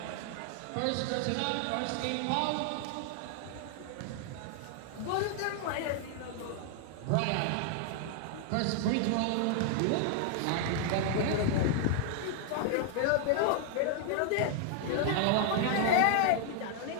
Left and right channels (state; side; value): different; both; correlation 0.00